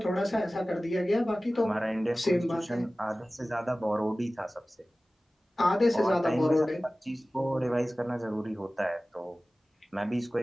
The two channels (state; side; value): normal; both; correlation 0.97